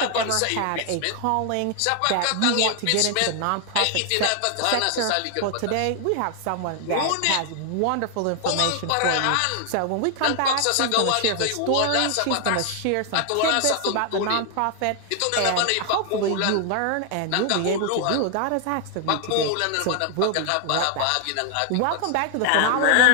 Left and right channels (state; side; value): different; both; correlation 0.00